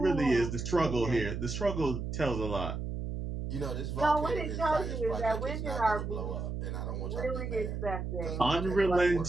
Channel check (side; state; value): right; noise; hum, 4 dB below the sound